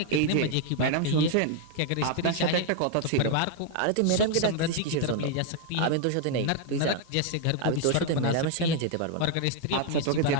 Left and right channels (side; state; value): both; different; correlation 0.00